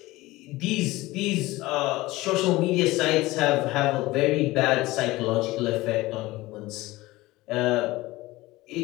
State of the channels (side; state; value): right; quieter; 19.3 dB